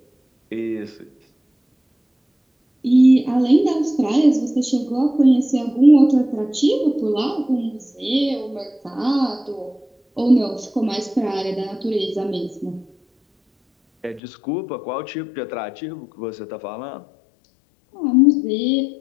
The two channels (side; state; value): right; drops out; at 14.2 s